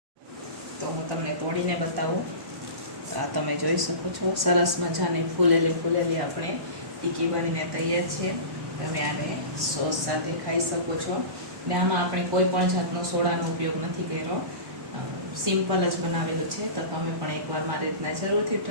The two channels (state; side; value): late; left; 1.1 ms